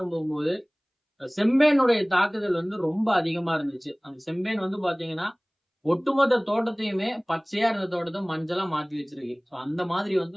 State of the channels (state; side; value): identical; both; correlation 1.00